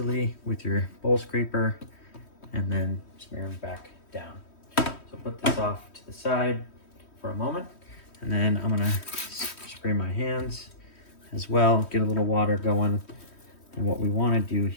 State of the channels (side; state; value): right; late; 3.1 ms